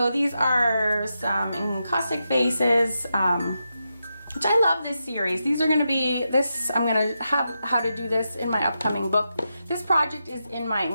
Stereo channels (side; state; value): both; inverted; correlation -0.87